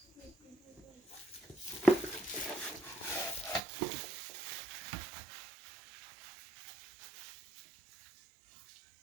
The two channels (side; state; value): left; drops out; at 3.6 s